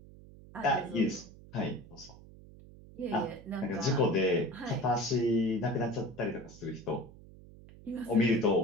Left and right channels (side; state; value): right; noise; hum, 20 dB below the sound